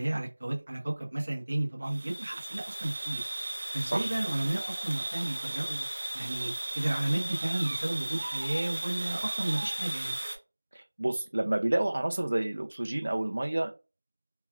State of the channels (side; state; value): both; inverted; correlation -1.00